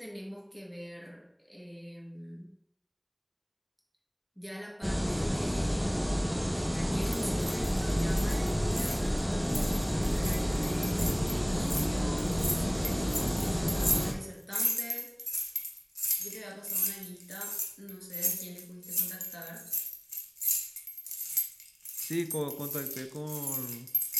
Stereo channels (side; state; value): both; identical; correlation 1.00